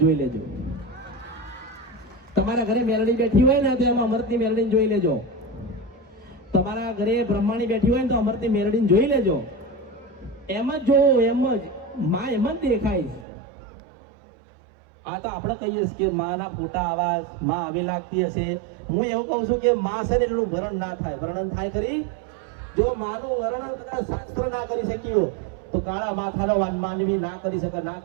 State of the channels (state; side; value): drops out; left; at 13.2 s